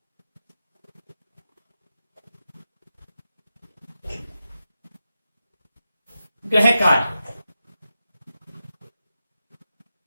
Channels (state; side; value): inverted; both; correlation -0.90